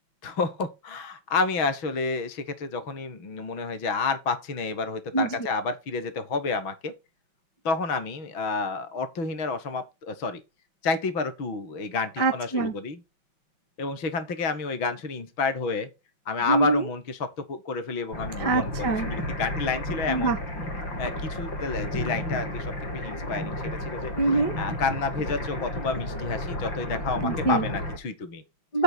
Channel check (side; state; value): right; late; 6.1 ms